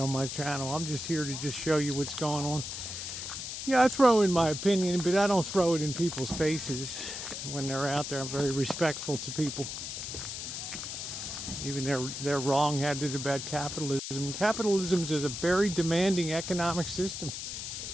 my channel. I'm just here to just show you what's going on. Yeah, I throw in my opinion, but I don't throw it in people's faces when they're out there. I'm very respectful to people. Even they're wrong-headed about capitalism. Capitalism is a very demanding economic system.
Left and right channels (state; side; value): noise; left; hiss, 6 dB below the sound